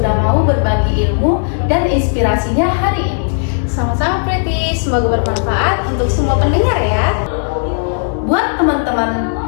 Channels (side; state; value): right; silent; digital silence